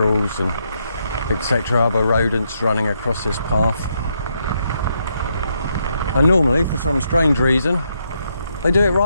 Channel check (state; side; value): inverted; both; correlation -0.78